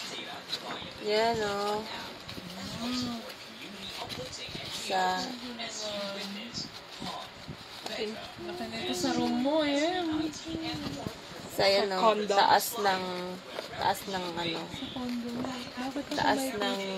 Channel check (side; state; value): both; identical; correlation 1.00